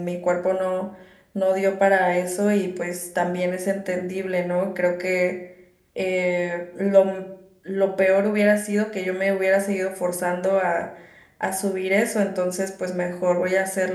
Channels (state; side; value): identical; both; correlation 1.00